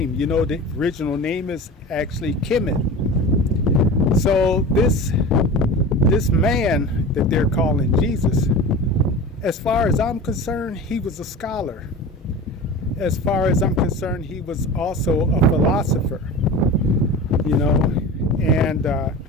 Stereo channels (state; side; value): normal; both; correlation 0.33